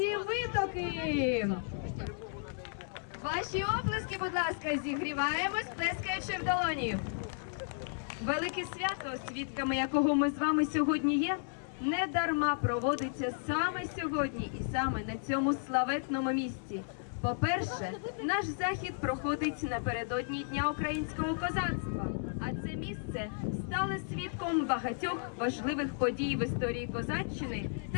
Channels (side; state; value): right; silent; digital silence